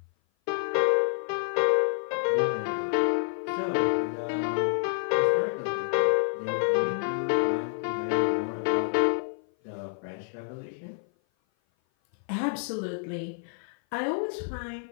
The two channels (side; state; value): right; silent; 56 dB below the other